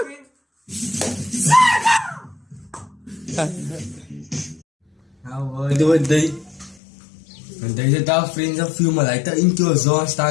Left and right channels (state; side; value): drops out; right; at 6.8 s